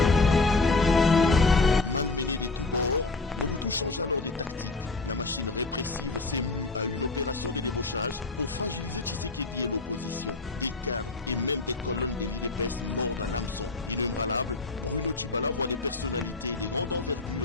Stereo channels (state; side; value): quieter; right; 3.5 dB